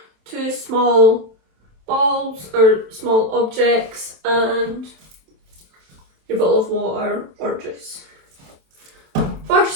2 small balls or small objects and your bottle of water or juice.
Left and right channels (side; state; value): left; late; 27 ms